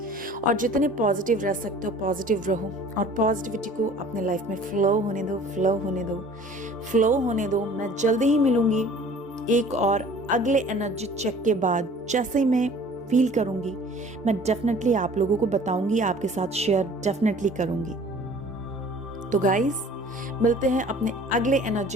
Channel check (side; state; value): both; normal; correlation 0.49